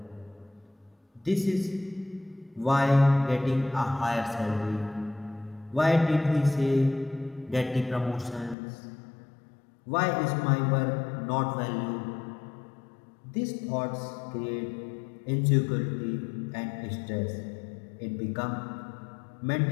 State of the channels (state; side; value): drops out; right; at 8.6 s